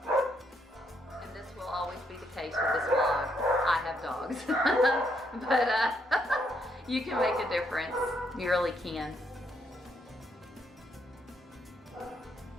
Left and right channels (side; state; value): both; normal; correlation 0.74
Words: And this will always be the case with this vlog. I have dogs. But you can make a difference. You really can.